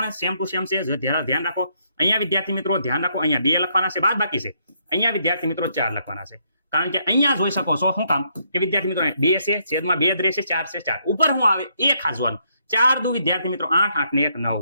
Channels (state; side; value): inverted; both; correlation -0.73